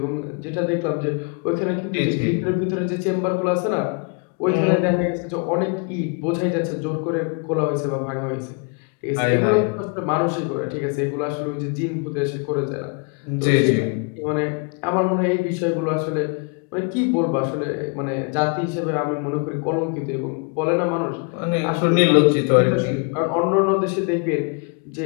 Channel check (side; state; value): right; quieter; 35.8 dB